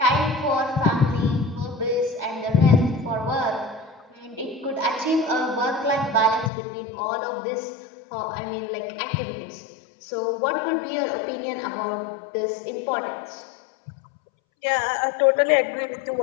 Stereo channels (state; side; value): drops out; right; at 6.5 s